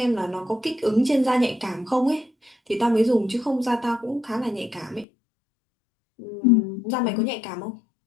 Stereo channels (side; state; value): right; drops out; at 5.1 s